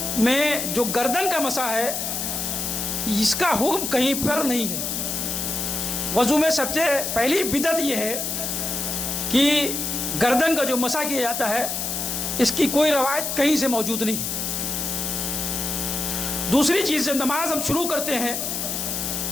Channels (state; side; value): noise; left; hiss, 2 dB below the sound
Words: میں جو گردن کا مسح ہے اس کا حکم کہیں پر نہیں ہے۔ وضو میں سب سے پہلی بدعت یہ ہے کہ گردن کا جو مسح کیا جاتا ہے اس کی کوئی روایت کہیں سے موجود نہیں۔ دوسری چیز، جب نماز ہم شروع کرتے ہیں